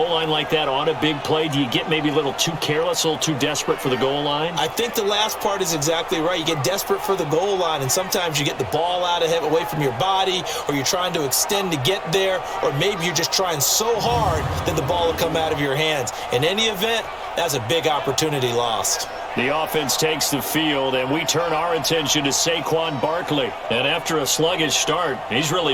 line like that on a big play, do you get maybe a little too careless, a little too desperate for the goal line? I think the last part is exactly right. You get desperate for the goal line, and sometimes you get the ball out of it, away from your body, or you're trying to extend to get there, or maybe you're just trying so hard that the ball will come out of your hands. In any event, that's a big opportunity lost. The offense takes the field, and we turn our attention to Saquon Barkley. And after a sluggish start, he's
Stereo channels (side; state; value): both; identical; correlation 1.00